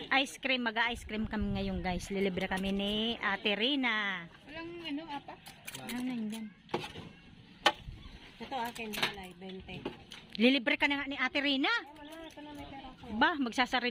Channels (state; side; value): identical; both; correlation 1.00